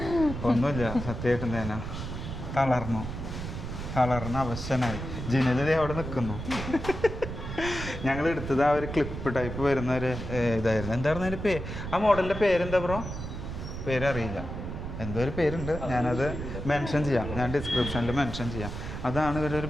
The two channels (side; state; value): right; noise; rumble, 7 dB below the sound